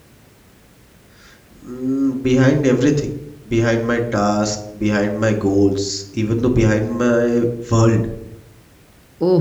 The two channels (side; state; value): both; identical; correlation 1.00